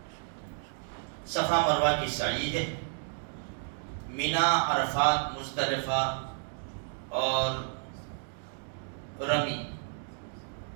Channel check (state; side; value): silent; left; 57 dB below the other